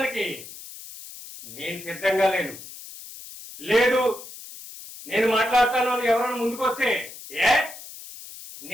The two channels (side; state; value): left; noise; hiss, 15 dB below the sound